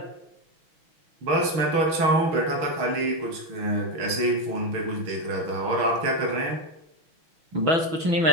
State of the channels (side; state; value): left; late; 6.1 ms